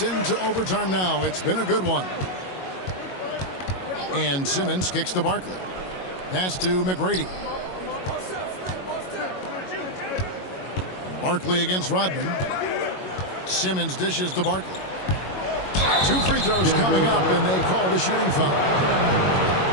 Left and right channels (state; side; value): late; right; 22 ms